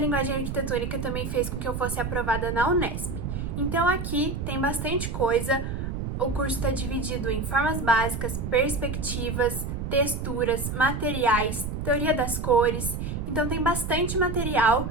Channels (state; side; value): noise; right; rumble, 4 dB below the sound